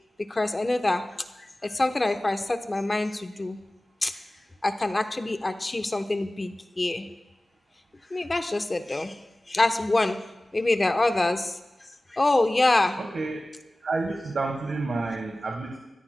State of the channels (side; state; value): both; normal; correlation 0.97